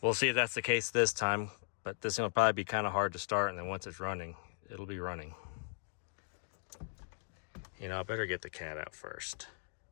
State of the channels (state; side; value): silent; right; digital silence